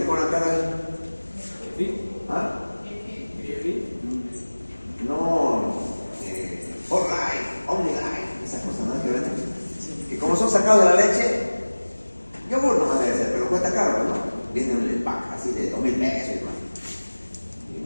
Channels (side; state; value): both; inverted; correlation -1.00